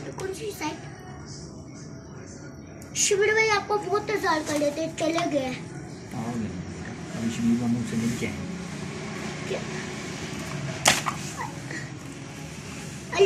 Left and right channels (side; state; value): both; identical; correlation 1.00